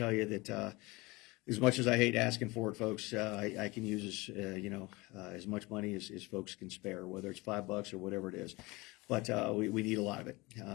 you that as much as I hate asking for it, folks, I can use as much money as folks can spare, whether it's $5 or whatever it is. But we need a lot of it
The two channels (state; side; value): quieter; right; 23.2 dB